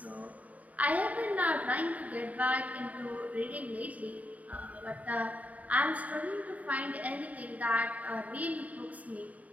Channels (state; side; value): late; left; 0.071 ms